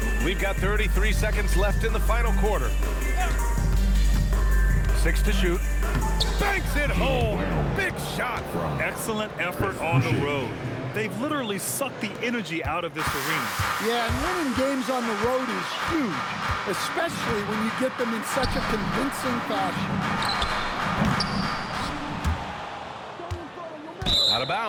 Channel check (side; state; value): both; identical; correlation 1.00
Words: We've got 33 seconds left in the final quarter. 6 to shoot. Banks it home. Big shot. Excellent effort on the road. They've literally sucked the energy out of this arena. Yeah, and winning games on the road is huge, especially when you get them in such a convincing fashion. Out of